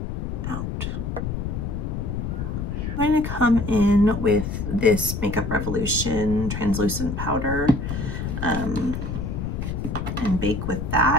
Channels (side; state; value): left; noise; rumble, 4 dB below the sound